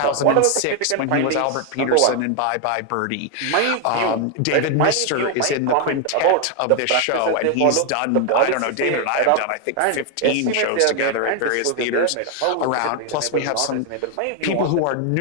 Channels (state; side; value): different; both; correlation 0.01